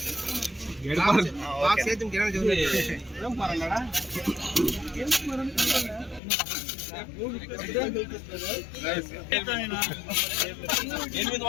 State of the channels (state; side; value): drops out; right; at 6.2 s